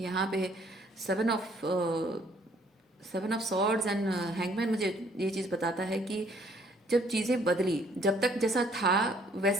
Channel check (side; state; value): both; normal; correlation 0.62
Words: यहाँ पे 7 ऑफ सॉर्ड्स एंड हैंगमैन मुझे ये चीज़ बताता है कि जब चीज़ें बदली, जब तक जैसा था